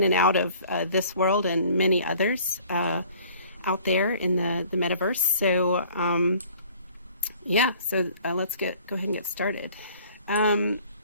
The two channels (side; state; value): both; inverted; correlation -0.53